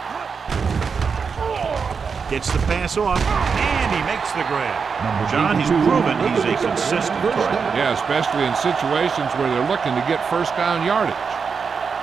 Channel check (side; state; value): left; quieter; 5.7 dB